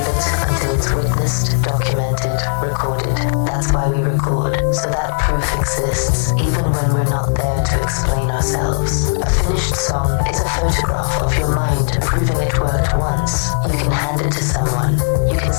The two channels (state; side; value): silent; right; digital silence